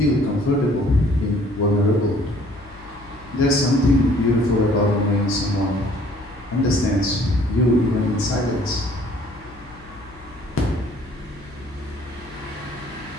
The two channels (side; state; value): left; noise; hum, 22 dB below the sound